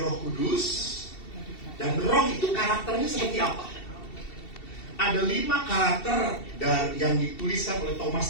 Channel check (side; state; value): right; late; 2.7 ms